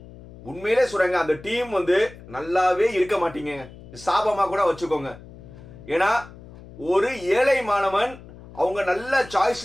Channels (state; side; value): noise; left; hum, 18 dB below the sound